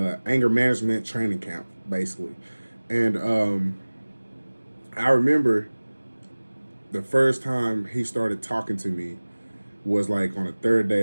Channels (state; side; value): inverted; both; correlation -1.00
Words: anger management training camp, basically. And I remember the first time he started talking to me was like on the third day